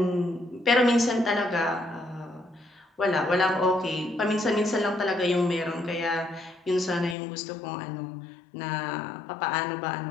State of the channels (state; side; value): drops out; right; at 7.2 s